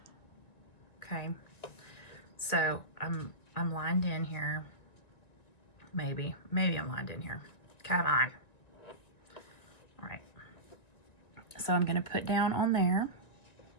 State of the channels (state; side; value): late; right; 1.9 ms